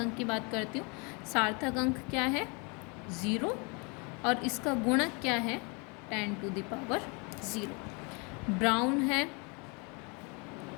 की बात करती हूँ। सार्थक अंक क्या है 0 और इसका गुणक क्या है 10 टू द पावर 0। ब्राउन है,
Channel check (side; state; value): right; quieter; 31.3 dB